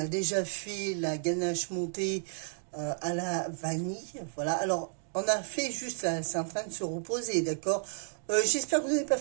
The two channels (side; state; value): left; silent; digital silence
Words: déjà fait la ganache montée à la vanille. Voilà, alors on a fait juste là, c'est en train de se reposer, d'accord. J'espère que vous n'avez pas